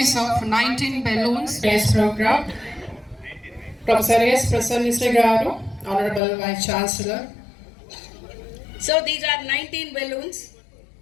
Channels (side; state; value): right; drops out; at 6.2 s